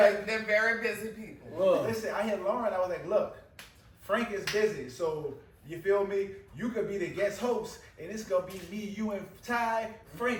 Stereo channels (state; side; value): identical; both; correlation 1.00